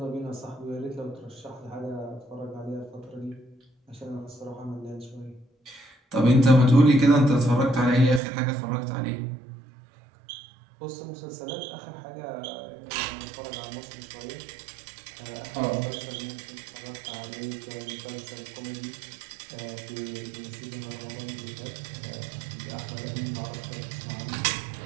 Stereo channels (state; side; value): drops out; left; at 8.2 s